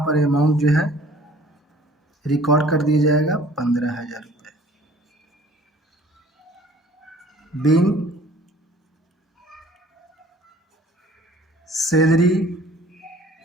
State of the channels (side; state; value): both; normal; correlation 0.52